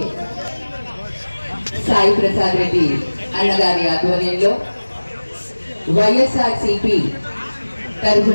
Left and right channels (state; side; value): inverted; both; correlation -1.00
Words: సాయి ప్రసాద్ రెడ్డి అన్నగారి ఆధ్వర్యంలో వైఎస్ఆర్సీపీ